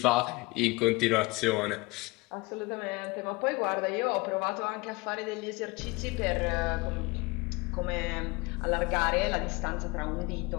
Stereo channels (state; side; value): quieter; right; 24.3 dB